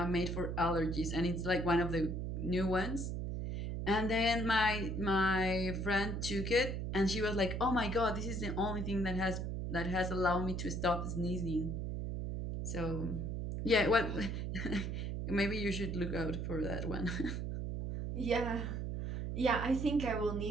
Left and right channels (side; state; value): right; noise; hum, 3 dB below the sound